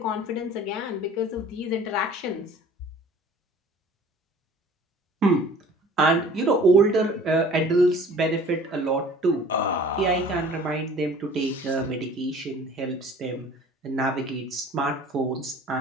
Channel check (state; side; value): normal; both; correlation 0.48